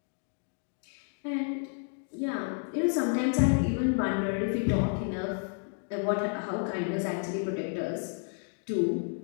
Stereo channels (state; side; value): silent; right; 57 dB below the other